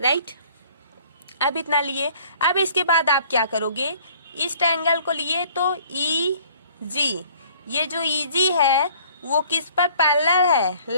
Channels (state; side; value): inverted; both; correlation -0.55